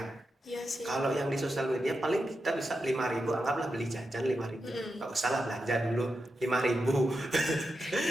Iya sih. Kalau yang di sosial media paling kita bisa 5.000, anggaplah beli jajan 5.000, nggak usah lah belanja dulu 5.000.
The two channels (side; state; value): both; normal; correlation 0.88